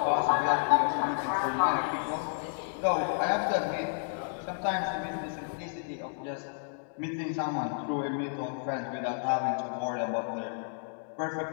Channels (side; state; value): right; silent; digital silence